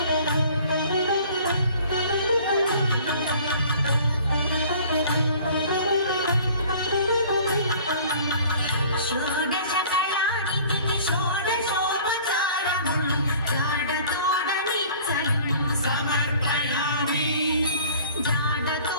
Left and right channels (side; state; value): both; inverted; correlation -0.50